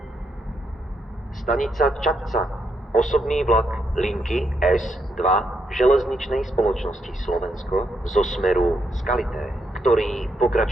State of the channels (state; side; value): normal; both; correlation 0.78